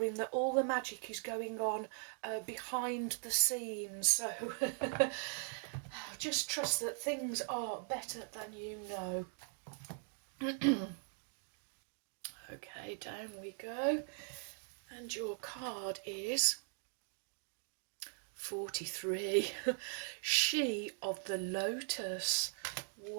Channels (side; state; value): left; silent; 51 dB below the other